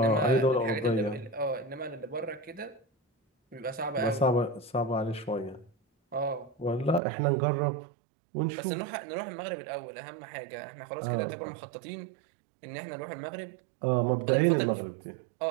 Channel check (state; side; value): drops out; left; at 7.0 s